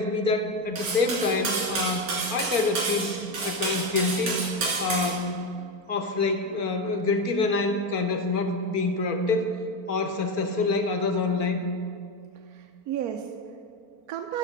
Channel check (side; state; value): left; late; 4.4 ms